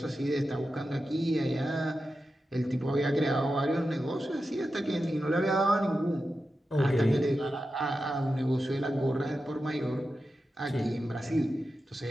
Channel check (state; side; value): normal; both; correlation 0.91